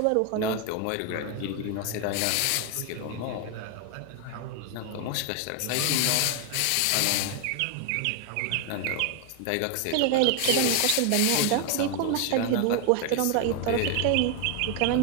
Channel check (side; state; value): both; different; correlation 0.01